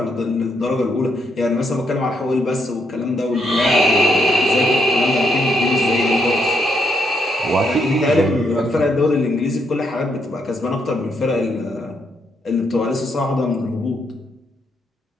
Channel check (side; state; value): both; normal; correlation 0.76